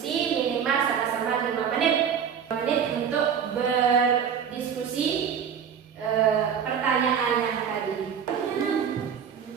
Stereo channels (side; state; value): left; quieter; 7.7 dB